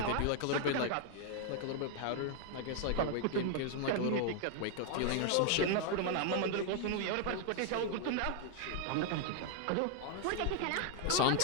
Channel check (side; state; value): both; different; correlation 0.00